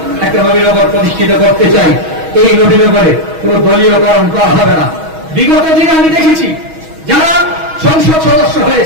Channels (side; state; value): left; late; 6.3 ms